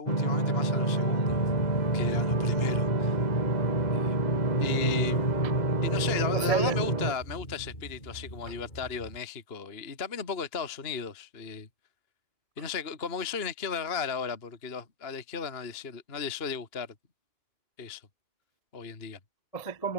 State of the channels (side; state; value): right; late; 2.8 ms